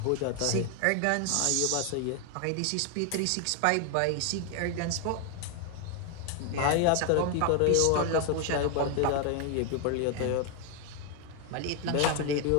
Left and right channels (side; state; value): both; different; correlation 0.01